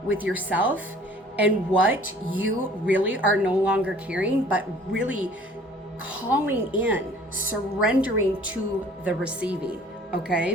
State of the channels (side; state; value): both; normal; correlation 0.52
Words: with yourself and what you really are no longer carrying, but really calling in, surrendering to the receiving,